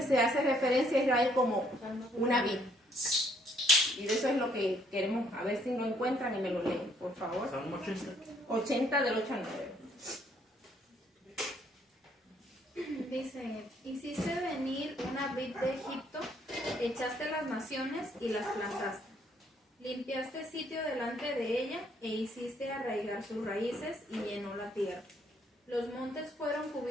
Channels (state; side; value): normal; both; correlation 0.67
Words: se hace referencia a Israel como una vid. Y de eso es lo que queremos, a ver si lo encuentran y me lo leen, por favor. Salmo 80. 80 del 8 al 9. Dice, hiciste venir una vid de Egipto, echaste las naciones y las plantaste. Limpiaste sitio delante de ella e hiciste arraigar sus raíces y llenó la tierra. Los montes fueron